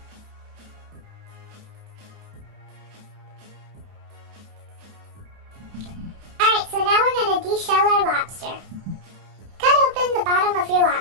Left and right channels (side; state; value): left; late; 31 ms